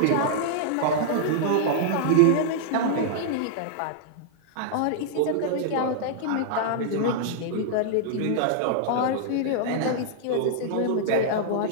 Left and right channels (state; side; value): different; both; correlation -0.01